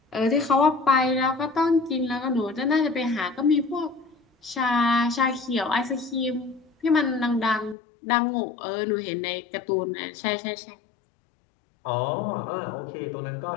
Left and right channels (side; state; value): right; drops out; at 7.8 s